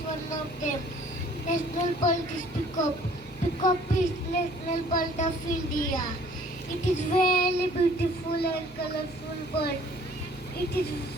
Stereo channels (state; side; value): noise; right; hum, 21 dB below the sound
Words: One of them, national bird is peacock. Peacock is national bird of India. It is very beautiful and colorful bird. It is